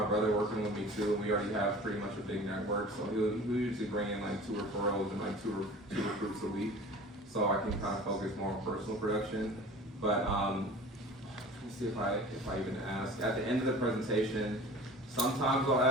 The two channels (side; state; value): both; normal; correlation 0.42